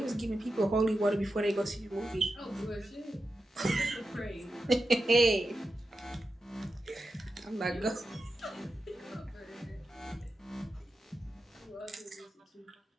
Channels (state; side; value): normal; both; correlation 0.90